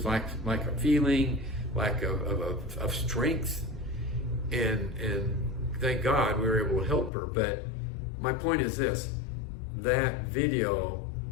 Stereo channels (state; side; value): drops out; right; at 7.1 s